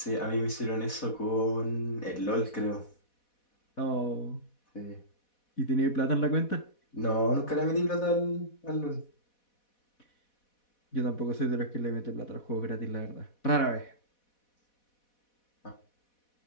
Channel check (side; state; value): right; late; 4.1 ms